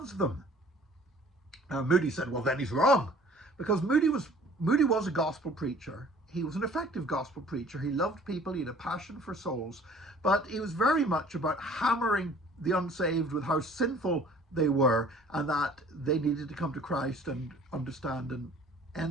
them. Moody said, well, then he's wrong. Because Moody was a gospel preacher. He was an effective gospel preacher. He loved people. He had a passion for souls. But he was very much about hammering the unsaved with how sinful they were, and that they needed to come to Christ and understand and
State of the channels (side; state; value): both; normal; correlation 0.51